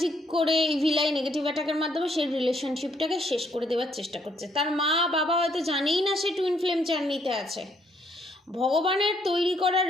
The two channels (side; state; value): both; normal; correlation 0.69